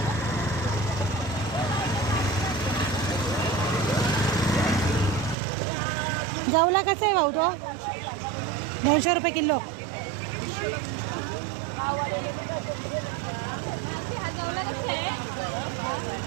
जवला कसं आहे भाऊ तो? 200 रुपये किलो.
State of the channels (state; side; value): drops out; left; at 5.4 s